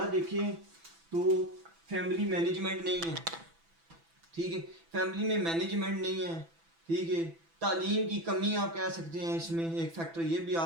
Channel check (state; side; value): late; left; 6.0 ms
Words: دیکھیں تو فیملی مینجمنٹ نہیں ہے، ٹھیک ہے، فیملی میں مینجمنٹ نہیں ہے، ٹھیک ہے. تعلیم کی کمی آپ کہہ سکتے ہیں، اس میں ایک فیکٹر یہ بھی